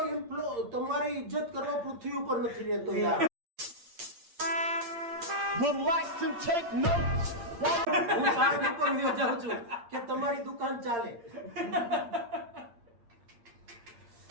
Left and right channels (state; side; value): late; left; 8.6 ms